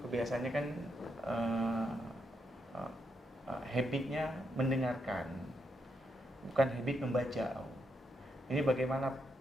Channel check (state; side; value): normal; both; correlation 0.80